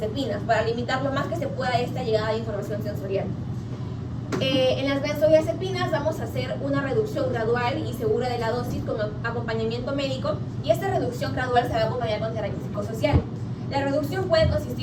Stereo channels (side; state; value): both; identical; correlation 1.00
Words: para limitar lo más que se pueda esta llegada de información sensorial. En las benzodiazepinas vamos a hacer una reducción gradual y segura de la dosis con acompañamiento médico, y esta reducción gradual se va a acompañar con terapia psicosocial. La reducción puede